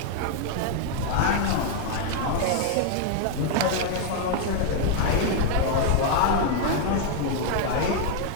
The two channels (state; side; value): different; both; correlation 0.01